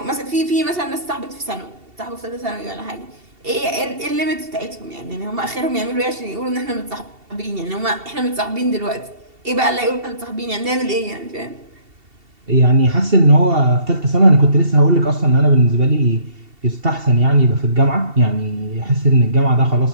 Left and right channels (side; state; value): left; late; 2.7 ms